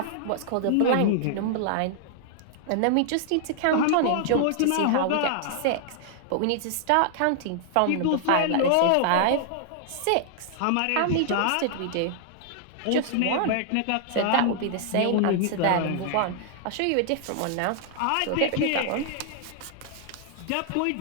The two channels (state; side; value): different; both; correlation -0.01